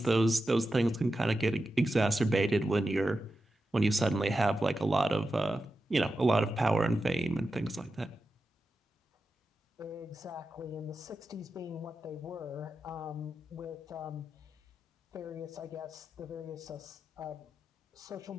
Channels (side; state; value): both; normal; correlation 0.90